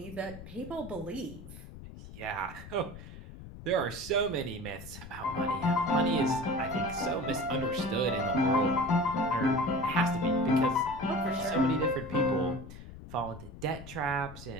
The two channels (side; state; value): left; noise; rumble, 14 dB below the sound